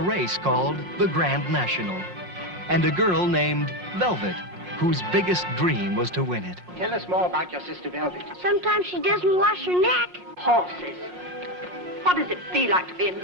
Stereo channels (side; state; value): left; late; 5.6 ms